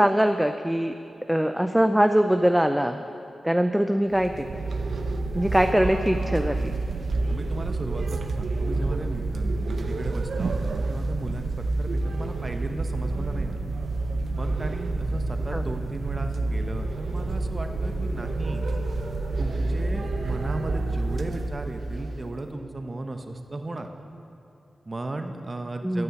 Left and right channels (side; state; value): both; normal; correlation 0.96